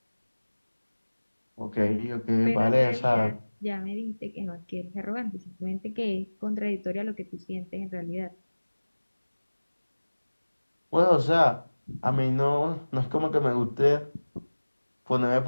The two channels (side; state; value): both; inverted; correlation -1.00